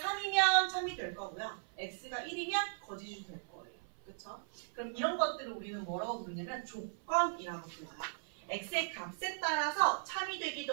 참이 될 거고요. x가 1이면 거짓이 될 거예요. 그쵸? 그럼 이런 것들을 우리는 뭐라고 부르냐면 조건이라고 불러요. x의 값에 따라서 참이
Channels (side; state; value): left; silent; 53 dB below the other